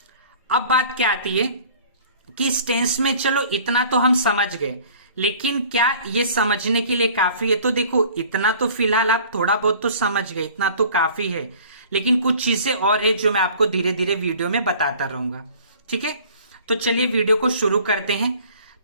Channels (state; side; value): inverted; both; correlation -0.48